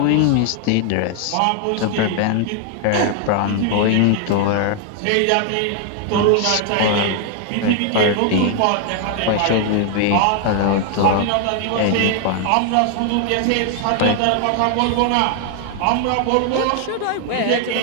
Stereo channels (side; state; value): both; different; correlation 0.00